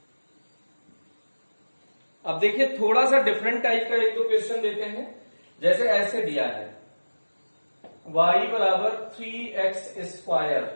अब देखिए थोड़ा सा डिफरेंट टाइप का एक दो क्वेश्चन देते हैं। जैसे ऐसे दिया है y बराबर 3x स्क्वायर,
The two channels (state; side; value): inverted; both; correlation -1.00